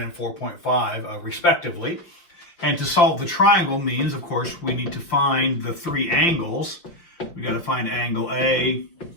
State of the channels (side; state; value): right; late; 5.9 ms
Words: and 4.5 respectively. And to solve the triangle means, of course, we need to find the three angles. We got to find angle A,